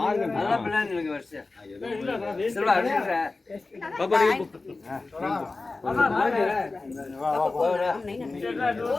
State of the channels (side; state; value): right; quieter; 3.5 dB